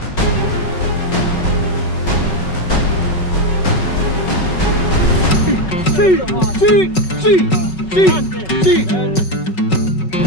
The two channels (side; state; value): right; late; 5.3 ms